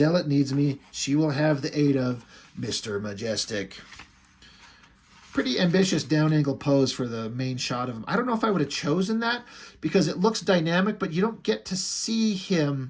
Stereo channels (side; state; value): both; identical; correlation 1.00